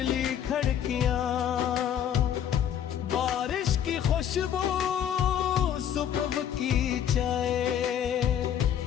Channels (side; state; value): right; quieter; 9.5 dB